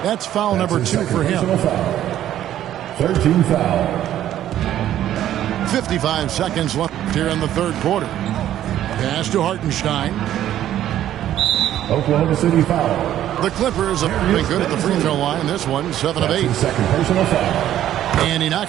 That's foul number 2 for him. 13 foul. 55 seconds left here in the 3rd quarter. Pass to Hartenstein. Oklahoma City foul. The Clippers have been good at the free throw line. This one, 7 of 8. 2nd personal foul. And he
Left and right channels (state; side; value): quieter; left; 11.9 dB